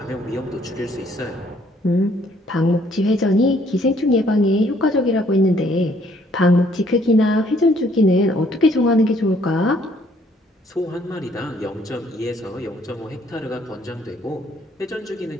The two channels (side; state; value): both; normal; correlation 0.64